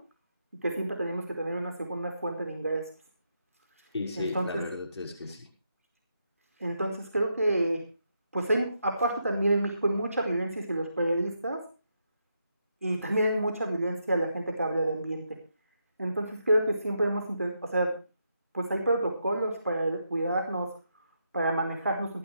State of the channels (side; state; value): both; inverted; correlation -0.81